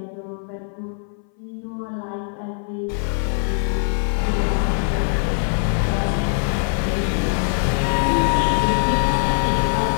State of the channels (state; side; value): silent; right; 61 dB below the other